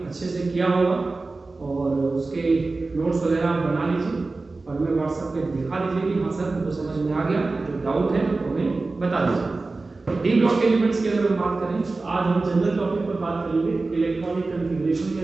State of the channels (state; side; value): quieter; left; 3.5 dB